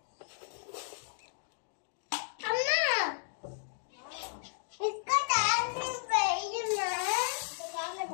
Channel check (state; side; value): silent; right; digital silence